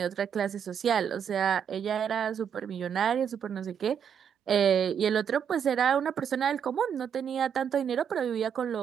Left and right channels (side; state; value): left; quieter; 8.0 dB